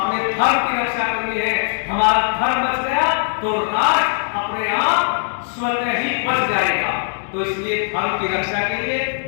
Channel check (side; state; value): right; silent; 63 dB below the other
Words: धर्म की रक्षा करनी है। हमारा धर्म बच गया तो राष्ट्र अपने आप स्वतः ही बच जाएगा। तो इसलिए धर्म की रक्षा के लिए